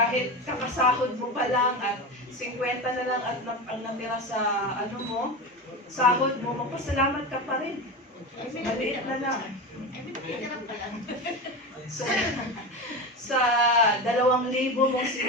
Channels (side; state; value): both; normal; correlation 0.23